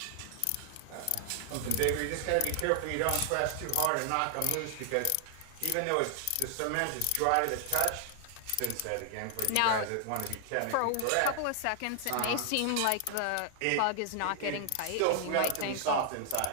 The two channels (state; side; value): different; both; correlation 0.00